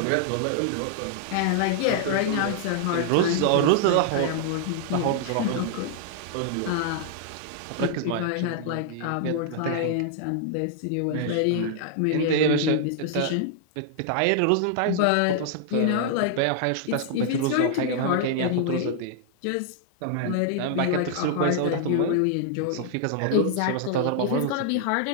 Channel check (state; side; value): different; both; correlation -0.01